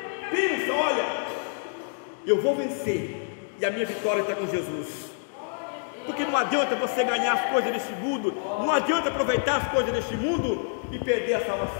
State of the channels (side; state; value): right; silent; digital silence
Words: pensa, olha, eu vou vencer, e a minha vitória está com Jesus. Porque não adianta você ganhar as coisas deste mundo, não adianta aproveitar as coisas deste mundo e perder a